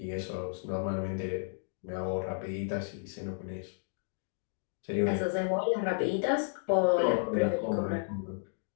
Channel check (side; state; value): right; silent; digital silence